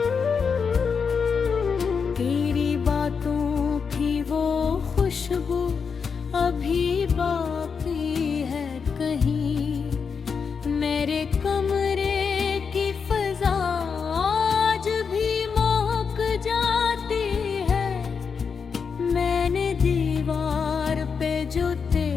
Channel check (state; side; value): quieter; right; 5.9 dB